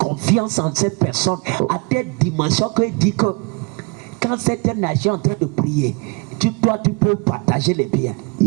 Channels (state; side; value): quieter; left; 30.8 dB